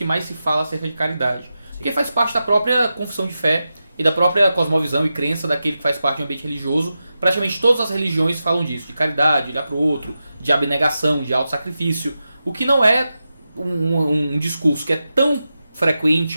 mais se fala acerca de caridade. Porque faz parte da própria confissão de fé e da própria cosmovisão e crença daquele que faz parte de um ambiente religioso. Praticamente todas as religiões falam disso, de caridade, de olhar para o outro, de abnegação, de autossacrifício. O que não é um discurso que é tão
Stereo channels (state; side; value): inverted; both; correlation -0.91